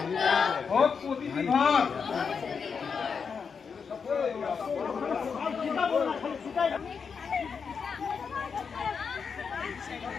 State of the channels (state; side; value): quieter; right; 5.9 dB